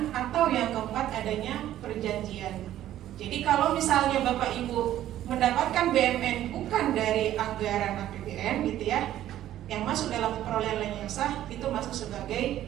atau yang keempat adanya perjanjian. Jadi kalau misalnya Bapak Ibu mendapatkan BMN bukan dari anggaran APBN gitu ya, yang masuk dalam perolehan lain yang sah itu masuk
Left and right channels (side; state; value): left; quieter; 12.7 dB